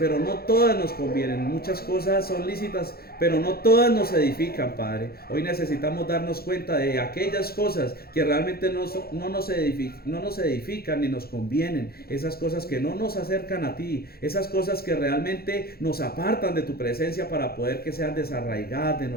no todas nos convienen. Muchas cosas son lícitas, pero no todas nos edifican, Padre. Hoy necesitamos darnos cuenta de aquellas cosas que realmente no nos edifican ni nos convienen. Esas cosas que no nos acercan a ti. Esas cosas que realmente nos apartan de tu presencia para poder que sean desarraigadas de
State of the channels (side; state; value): right; late; 0.45 ms